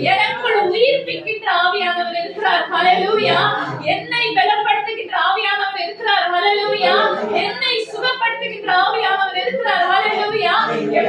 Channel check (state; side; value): identical; both; correlation 1.00